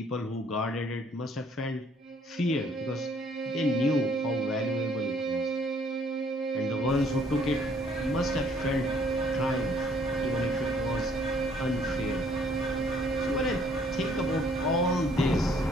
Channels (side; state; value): both; normal; correlation 0.62